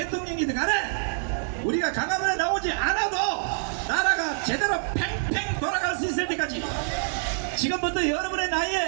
간에 우리가 강화문에 나오지 않아도 나라가 제대로 팽팽 돌아갈 수 있을 때까지 지금부터 여러분의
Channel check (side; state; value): left; silent; 61 dB below the other